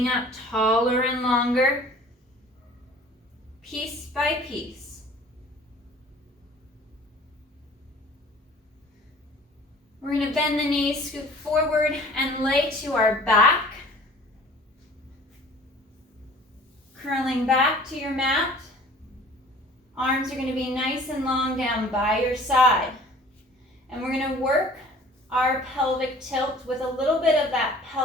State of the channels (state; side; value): normal; both; correlation 0.48